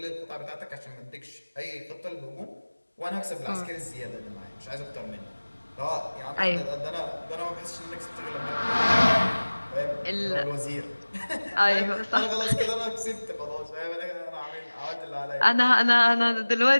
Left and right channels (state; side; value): inverted; both; correlation -1.00